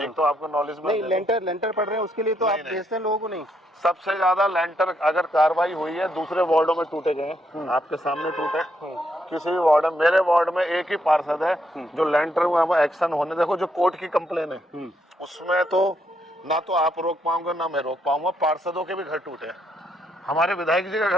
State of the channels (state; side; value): normal; both; correlation 0.75